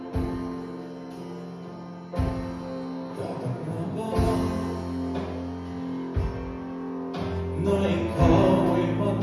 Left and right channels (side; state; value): both; identical; correlation 1.00